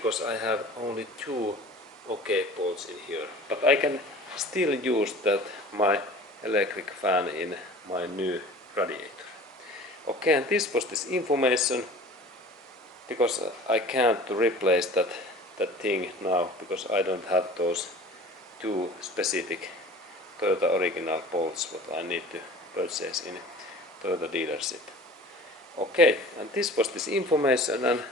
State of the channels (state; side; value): normal; both; correlation 0.43